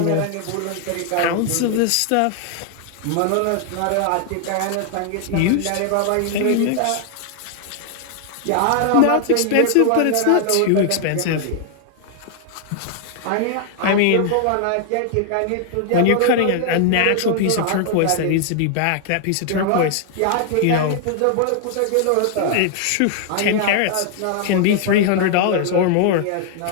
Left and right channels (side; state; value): both; different; correlation 0.00